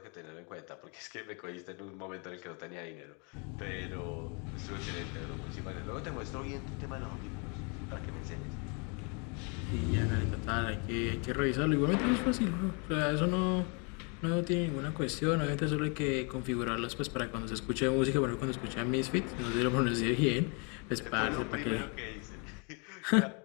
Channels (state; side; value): quieter; right; 34.7 dB